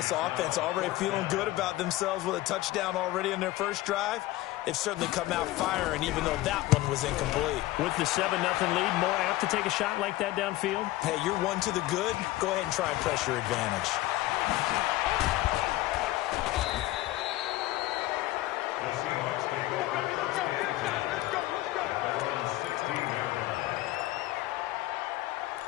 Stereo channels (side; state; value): right; quieter; 17.2 dB